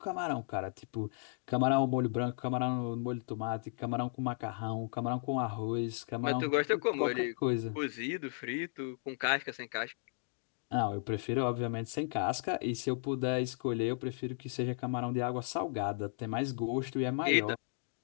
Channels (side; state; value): right; silent; digital silence